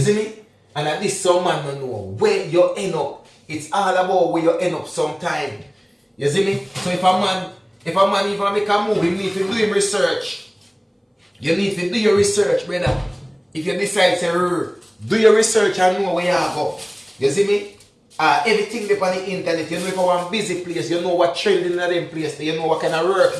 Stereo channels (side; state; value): both; identical; correlation 1.00